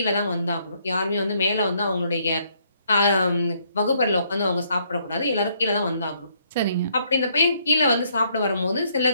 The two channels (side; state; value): both; inverted; correlation -0.70